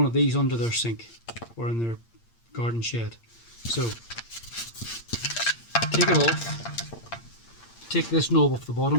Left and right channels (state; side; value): late; right; 8.7 ms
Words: of these under their sink or in their garden shed. So take it off, take this knob off the